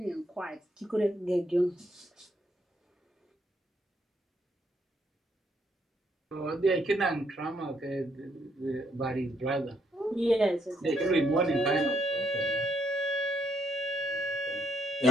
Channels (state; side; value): normal; both; correlation 0.73